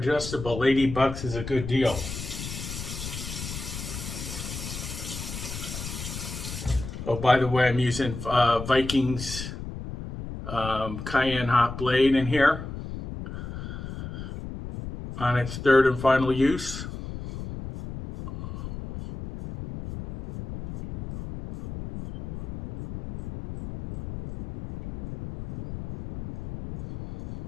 80 bucks is a good deal. Oh, by the way, I'm using Vikings Cayenne hot blade in here on its 3rd and final use.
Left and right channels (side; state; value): left; noise; rumble, 8 dB below the sound